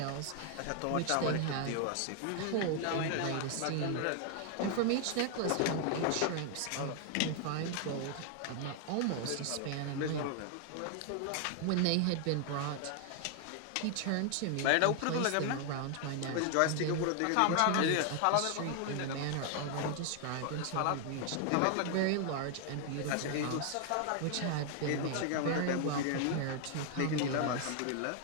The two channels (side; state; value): both; different; correlation 0.00